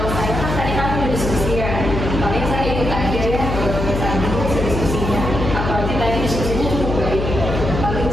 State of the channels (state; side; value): noise; left; hum, 3 dB below the sound